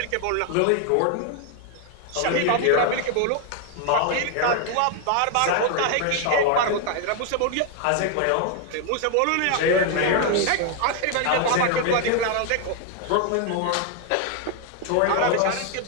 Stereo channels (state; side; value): different; both; correlation 0.00